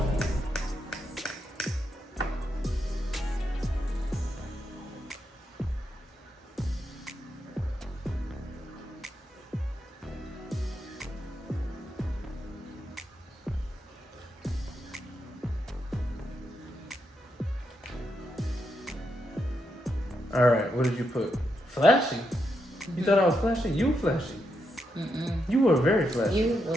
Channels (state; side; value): normal; both; correlation 0.82